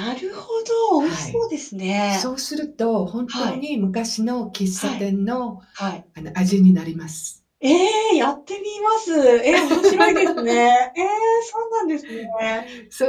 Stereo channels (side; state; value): both; identical; correlation 1.00